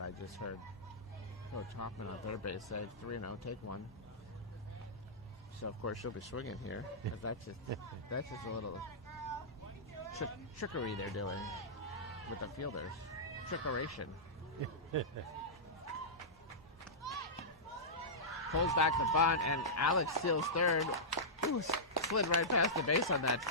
just heard Coach Hoffman on third base say 3-0, take one. So of course she'll be swinging here. But that's just a little trickery they're doing with the fielders. Trickeration. Pulls back the bunt, and Alex steals third. Ooh, slid right past the base on that.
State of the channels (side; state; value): both; normal; correlation -0.14